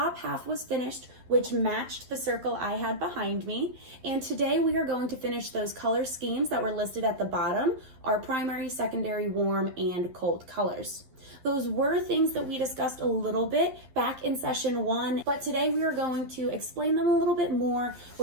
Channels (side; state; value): left; late; 11 ms